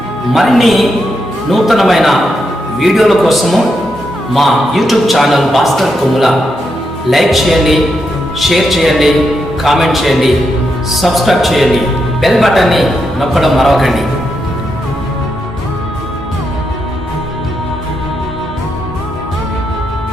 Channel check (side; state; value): both; normal; correlation 0.83